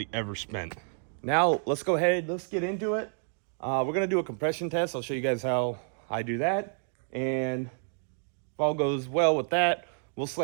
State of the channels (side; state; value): left; silent; digital silence